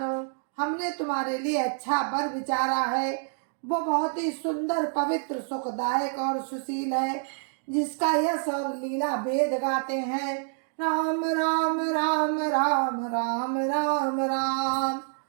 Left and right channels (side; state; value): left; silent; digital silence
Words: हमने तुम्हारे लिए अच्छा वर विचारा है। वो बहुत ही सुंदर पवित्र सुखदायक और सुशील है, जिसका यश और लीला वेद गाते हैं। राम राम राम राम राम राम राम।